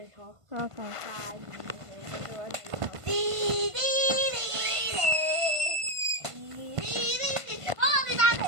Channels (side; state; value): left; late; 1.5 ms